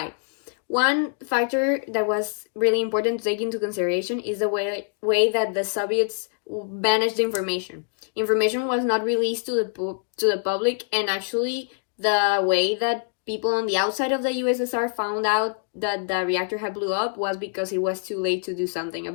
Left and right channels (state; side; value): silent; right; 62 dB below the other